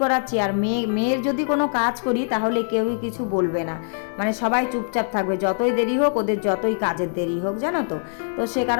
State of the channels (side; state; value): right; silent; digital silence